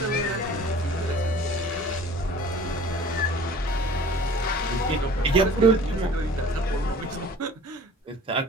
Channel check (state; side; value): normal; both; correlation 0.47